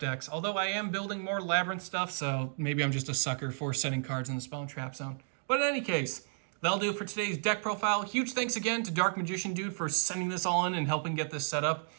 Although I am building more Labyrinth stuff, so maybe I'm just a sucker for setting cards in the spell and trap zone. But in any case, that'll do it for today's deck profile. Huge thanks again to DarkMagicianDude for sending this all in and helping get this set up.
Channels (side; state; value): left; silent; digital silence